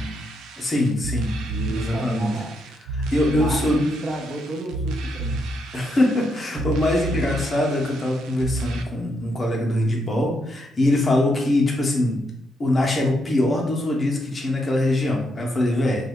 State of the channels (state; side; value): normal; both; correlation 0.79